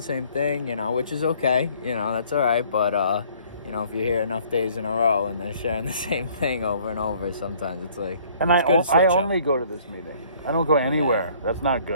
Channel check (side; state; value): both; inverted; correlation -0.58